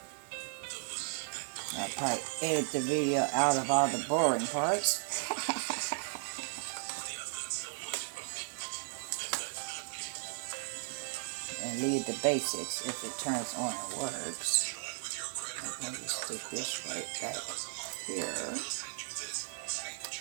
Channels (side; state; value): left; silent; digital silence